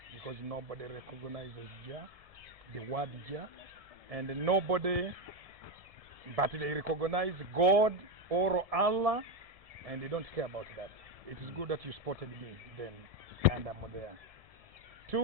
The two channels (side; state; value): left; late; 1.7 ms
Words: because nobody recognizes Jah, the word Jah, and nobody, but they recognize God or Allah, and they don't care about that. It is good that you spotted me then, and I'm there.